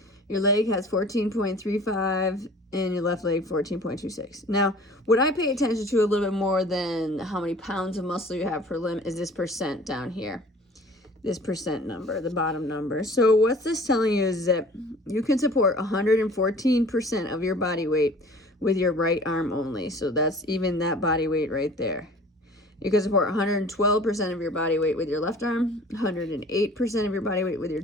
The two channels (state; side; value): normal; both; correlation 0.47